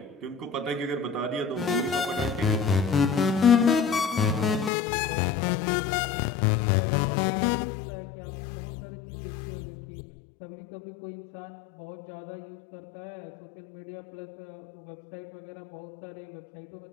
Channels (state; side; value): drops out; right; at 4.7 s